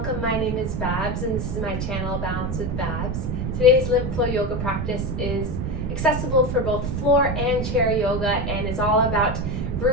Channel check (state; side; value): noise; right; rumble, 2 dB below the sound